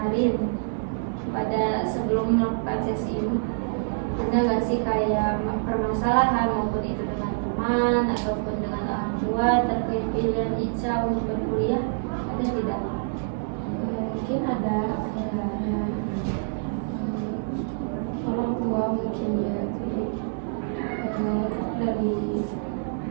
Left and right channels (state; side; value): silent; left; digital silence